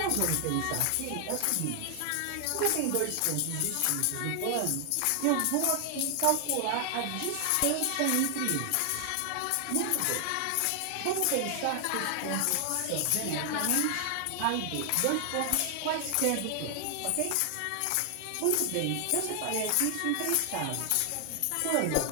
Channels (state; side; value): different; both; correlation 0.00